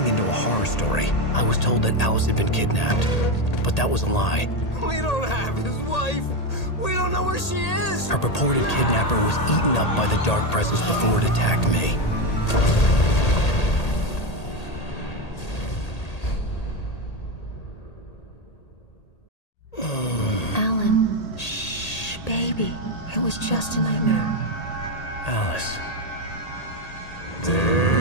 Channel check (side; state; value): right; late; 1.8 ms